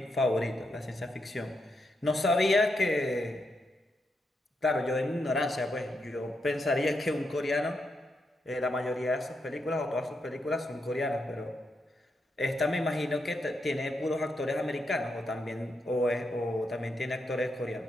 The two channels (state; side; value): normal; both; correlation 0.82